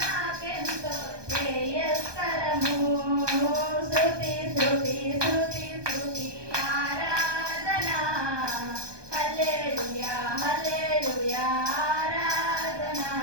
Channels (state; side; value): late; left; 1.2 ms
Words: నాకెంతో శ్రేయస్కరము శృతి శృతి శృతి శృతి ఆరాధన హల్లెలూయా హల్లెలూయా ఆరాధన